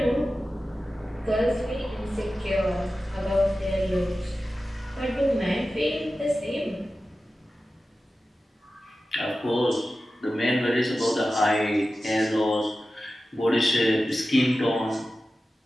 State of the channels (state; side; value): normal; both; correlation 0.94